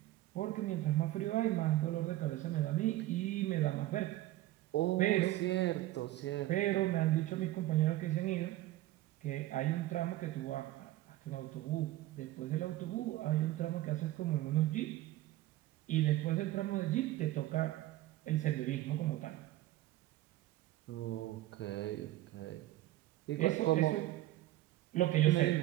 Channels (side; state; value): left; quieter; 15.9 dB